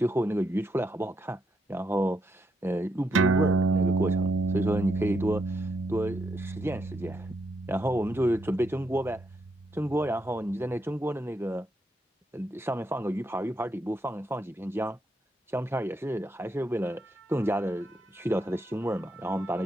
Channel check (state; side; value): normal; both; correlation 0.79